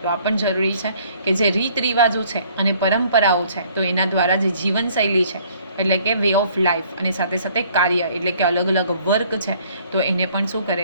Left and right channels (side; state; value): both; inverted; correlation -0.59